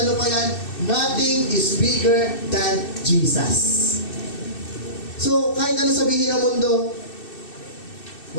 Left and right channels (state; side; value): late; right; 2.6 ms